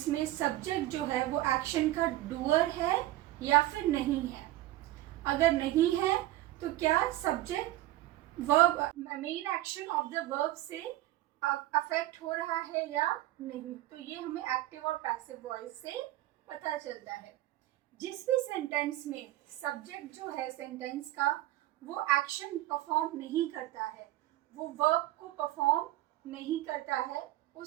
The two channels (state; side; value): quieter; left; 16.0 dB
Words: में सब्जेक्ट जो है वो एक्शन का डूअर है या फिर नहीं है. अगर नहीं है तो क्या subject verb main action of the verb से अफेक्ट हो रहा है या नहीं. तो ये हमें एक्टिव और पैसिव वॉइस से पता चलता है. जिस भी सेंटेंस में सब्जेक्ट जो है सेंटेंस का वो एक्शन परफॉर्म नहीं करता है, वो वर्ब को परफॉर्म नहीं करता है,